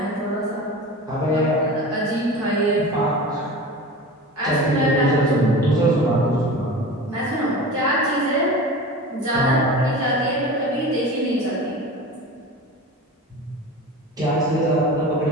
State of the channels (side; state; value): both; normal; correlation 0.33